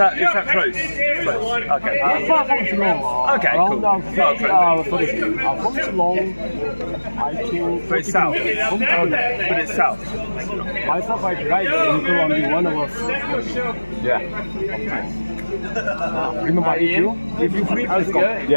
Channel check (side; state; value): both; inverted; correlation -1.00